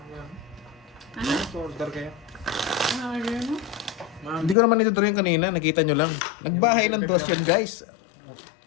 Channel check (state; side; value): drops out; right; at 4.5 s